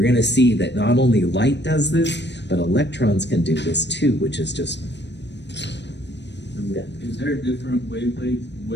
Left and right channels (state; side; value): late; right; 0.51 ms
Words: going to see that not only light does this, but electrons can do this too, which is just... Yeah. Is there a different